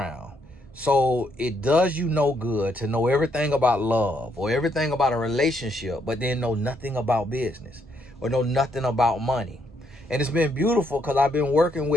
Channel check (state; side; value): normal; both; correlation 0.74